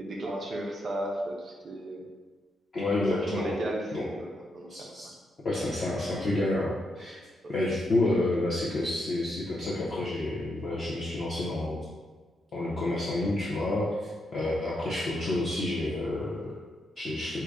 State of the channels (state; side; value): normal; both; correlation 0.81